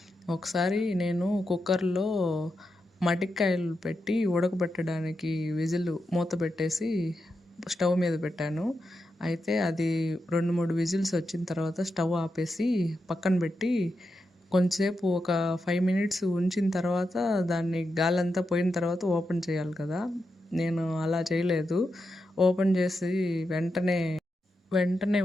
ఒకసారి నేను కుక్కర్లో మటికాయలు పెట్టి ఉడకబెట్టడానికి విజిల్ మూత పెట్టేసి స్టవ్ మీద పెట్టాను. అయితే అది 2-3 విజిల్స్ వచ్చిన తర్వాత స్టవ్ ఆపేసి పక్కన పెట్టి కొంచెంసేపు ఒక 5 మినిట్స్ ఉంచిన తర్వాత దాన్ని గాలంతా పోయిన తర్వాత ఓపెన్ చేయాలి కదా. నేను అలా చేయలేదు. ఓపెన్ చేసి వెంటనే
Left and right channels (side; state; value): both; normal; correlation 0.87